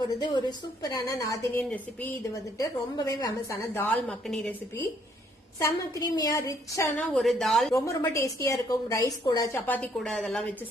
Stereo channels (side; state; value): both; normal; correlation 0.67